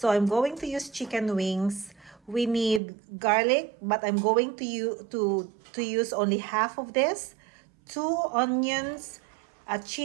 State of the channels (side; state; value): left; drops out; at 2.8 s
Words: I'm going to use chicken wings. We need garlic, but I'm going to use only half of this. 2 onions, a